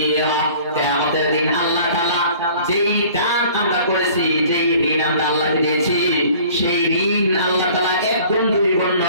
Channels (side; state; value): both; inverted; correlation -0.50